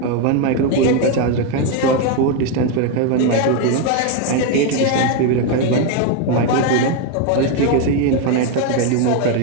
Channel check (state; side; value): different; both; correlation 0.02